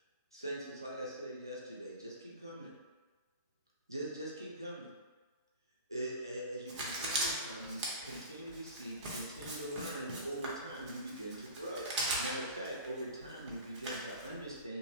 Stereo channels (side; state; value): both; inverted; correlation -0.35